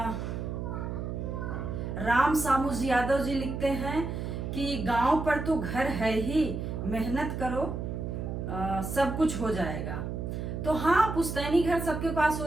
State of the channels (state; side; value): noise; right; hum, 4 dB below the sound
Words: राम सामुज यादव जी लिखते हैं कि गांव पर तो घर है ही, मेहनत करो सब कुछ हो जाएगा। तो हाँ, पुश्तैनी घर सबके पास